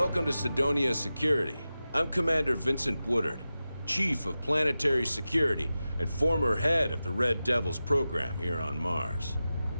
to Sidonia Security. I'm Commander Vincent Woodard, Chief of Planetary Security and former head of the Red Devils program here on Mars.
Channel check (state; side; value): inverted; both; correlation -0.94